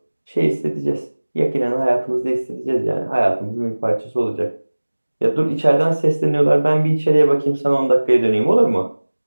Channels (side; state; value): both; inverted; correlation -1.00